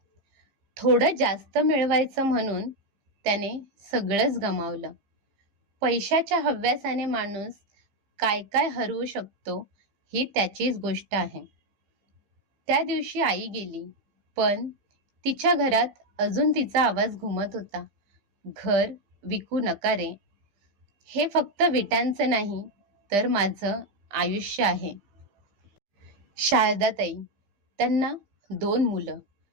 थोडं जास्त मिळवायचं म्हणून त्याने सगळंच गमावलं. पैशाच्या हव्यासाने माणूस काय काय हरवू शकतो ही त्याचीच गोष्ट आहे. त्या दिवशी आई गेली, पण तिच्या घरात अजून तिचा आवाज घुमत होता. घर विकू नका रे. हे फक्त विटांचं नाही, तर माझं आयुष्य आहे. शारदाताई, त्यांना 2 मुलं.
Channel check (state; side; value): late; left; 15 ms